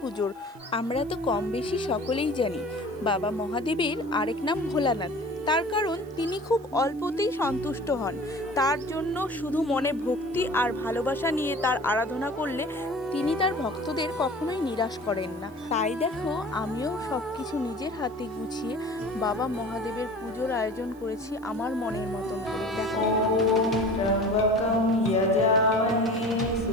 পুজোর। আমরা তো কম বেশি সকলেই জানি বাবা মহাদেবের আরেক নাম ভোলানাথ। তার কারণ তিনি খুব অল্পতেই সন্তুষ্ট হন। তার জন্য শুধু মনে ভক্তি আর ভালোবাসা নিয়ে তার আরাধনা করলে তিনি তার ভক্তদের কখনোই নিরাশ করেন না। তাই দেখো, আমিও সব কিছু নিজের হাতে গুছিয়ে বাবা মহাদেবের পুজোর আয়োজন করেছি আমার মনের মতন করে। দেখো, त्र्यम्बकं यजामहे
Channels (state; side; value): noise; right; hiss, 29 dB below the sound